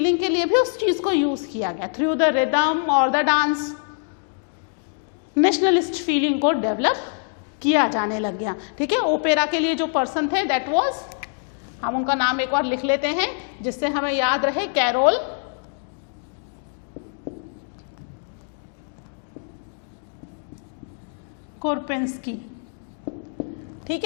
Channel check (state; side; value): silent; right; 63 dB below the other